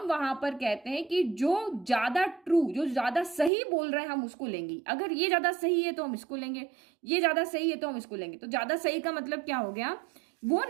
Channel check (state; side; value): drops out; left; at 3.5 s